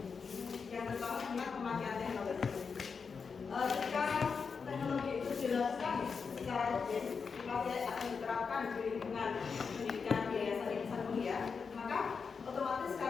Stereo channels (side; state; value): right; quieter; 5.5 dB